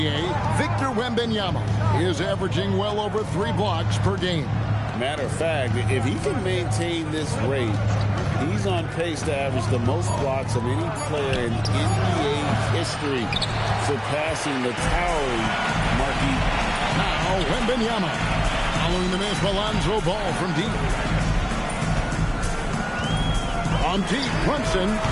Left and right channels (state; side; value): identical; both; correlation 1.00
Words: Victor Wembanyama is averaging well over 3 blocks per game. Matter of fact, if he can maintain this rate, he's on pace to average the most blocks of any player in NBA history, surpassing the towering Marquis. Now, Wembanyama. Following the miss, Alonzo Ball from deep. On deep, Brunson.